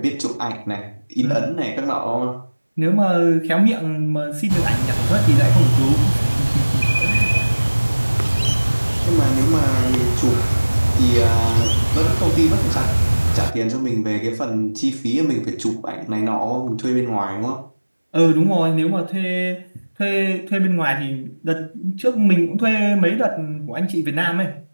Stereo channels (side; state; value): both; inverted; correlation -1.00